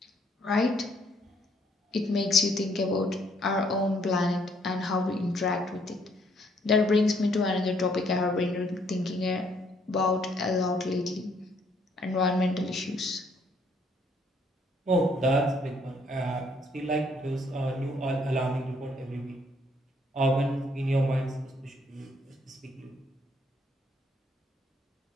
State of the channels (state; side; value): normal; both; correlation 0.67